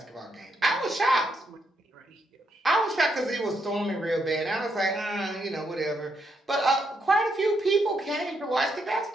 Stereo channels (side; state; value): both; normal; correlation 0.78